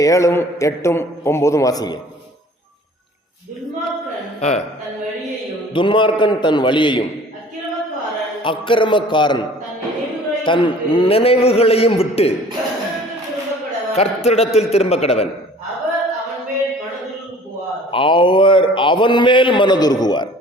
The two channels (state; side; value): normal; both; correlation 0.49